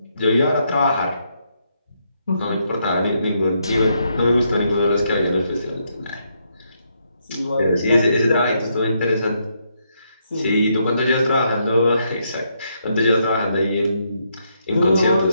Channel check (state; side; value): inverted; both; correlation -0.77